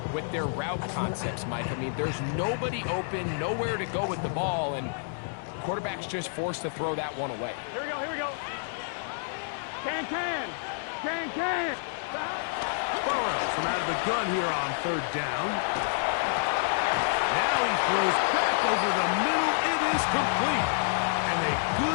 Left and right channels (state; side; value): silent; right; 59 dB below the other